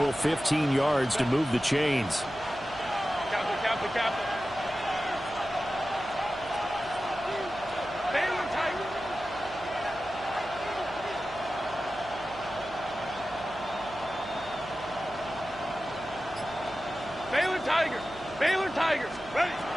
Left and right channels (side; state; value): right; noise; hum, 17 dB below the sound